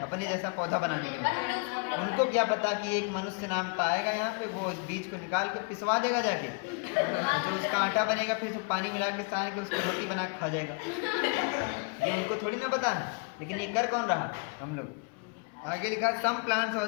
अपने जैसा पौधा बनाने के लिए। उनको क्या पता कि एक मनुष्य नाम का आएगा यहाँ पे, वो इस बीज को निकाल के पिसवा देगा जाके, जो उसका आटा बनेगा, फिर पानी मिला के सान के उसकी रोटी बना के खा जाएगा। ये उनको थोड़ी ना पता है, लेकिन ये कर कौन रहा? हम लोग। आगे लिखा, some plants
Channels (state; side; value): quieter; right; 33.5 dB